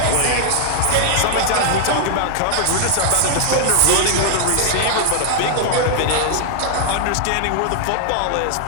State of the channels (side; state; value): both; different; correlation 0.00